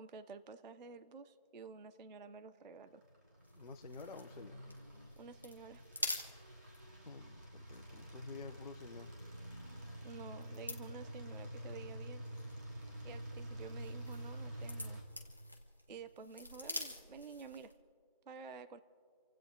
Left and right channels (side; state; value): both; inverted; correlation -0.67